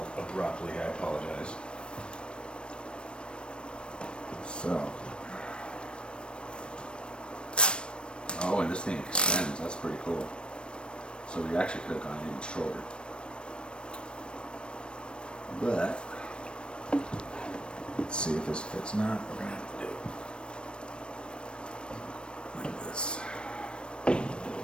abruptly, I apologize. So. Oh, and this thing extends, that's pretty cool. So we actually could have gone even shorter. But, let's see if this fits not. We're going to have to do it like this.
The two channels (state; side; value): late; right; 0.056 ms